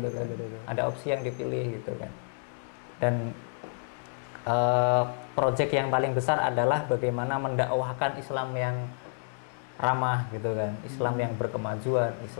kan. Ada opsi yang dipilih gitu kan. Dan proyek yang paling besar adalah bagaimana mendakwahkan Islam yang ramah gitu kan, Islam yang berkemajuan,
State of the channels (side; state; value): right; silent; digital silence